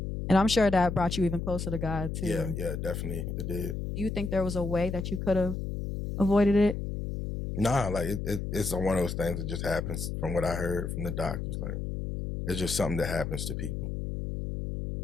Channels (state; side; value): noise; left; hum, 4 dB below the sound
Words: And I'm sure that brought you even closer to God too. Yeah, definitely it did. Do you think there was a way that you could have avoided it? Nah, like it's one of those things that just happens from what I heard from the doctors. Like it's just something that happens to people.